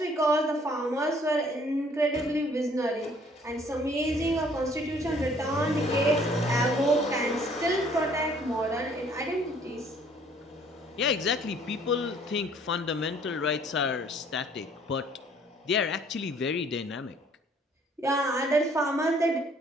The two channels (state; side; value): normal; both; correlation 0.59